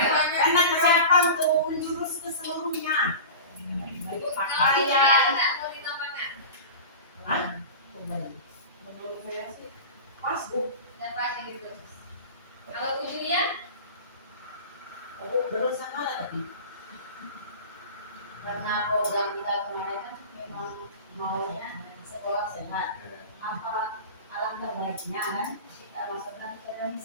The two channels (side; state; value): both; inverted; correlation -0.32